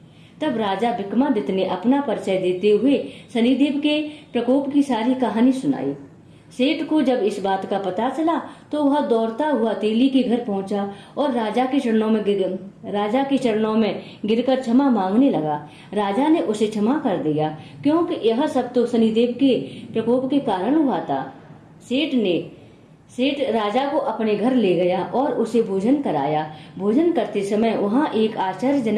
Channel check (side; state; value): both; identical; correlation 1.00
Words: तब राजा विक्रमादित्य ने अपना परिचय देते हुए शनिदेव के प्रकोप की सारी कहानी सुनाई। सेठ को जब इस बात का पता चला तो वह दौड़ता हुआ तेली के घर पहुंचा और राजा के चरणों में गिरकर क्षमा मांगने लगा। राजा ने उसे क्षमा कर दिया, क्योंकि यह सब तो शनिदेव के प्रकोप के कारण हुआ था। सेठ राजा को अपने घर ले गया और उसे भोजन कराया। भोजन करते समय वहाँ एक